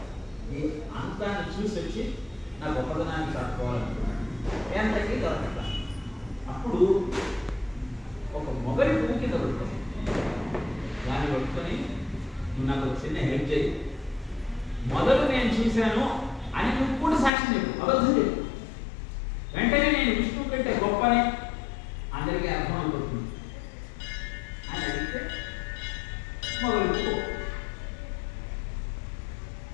ఈ అంతాన్ని చూసి వచ్చి నా గొప్పదనాన్ని కట్టుకోవాలనుకున్నాడు. ఎంతకీ దొరకట. అప్పుడు ఒక మొగలి పువ్వు కింద పడుతుంది. దాన్ని పట్టుకొని నువ్వు నాకు ఒక చిన్న హెల్ప్ చేయి, మొదలు నేను చూశాను అని నువ్వు కూడా సాక్ష్యం చెప్పు, అబద్ధం చెప్పు. వెంటనే నేను విష్ణువు కంటే గొప్పని అందరికీ అర్థమైపోతుంది అని అడిగితే మొదలు పువ్వు.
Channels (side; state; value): right; drops out; at 17.3 s